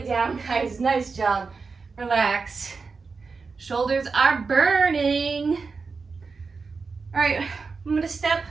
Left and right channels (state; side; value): quieter; left; 4.7 dB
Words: down, guys. Nice job. Relax. Shoulders are burning. All right, I'm gonna step